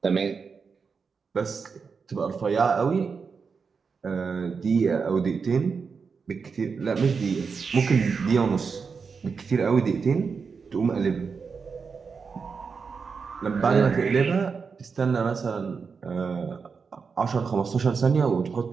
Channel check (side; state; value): left; quieter; 5.4 dB